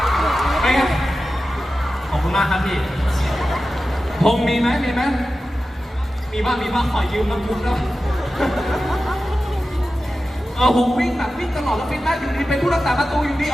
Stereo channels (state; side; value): normal; both; correlation 0.94